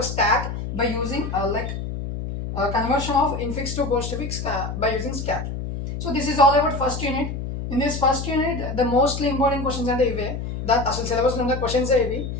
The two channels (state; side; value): noise; left; hum, 5 dB below the sound